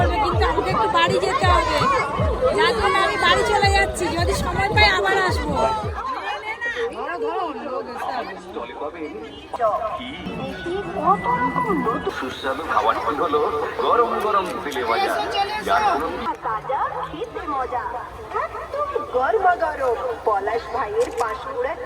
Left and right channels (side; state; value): both; identical; correlation 1.00